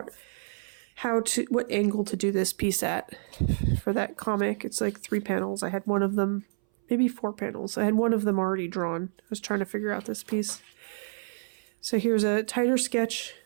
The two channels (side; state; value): left; silent; 59 dB below the other